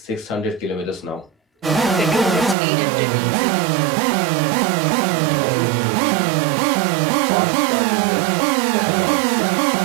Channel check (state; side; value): drops out; left; at 2.6 s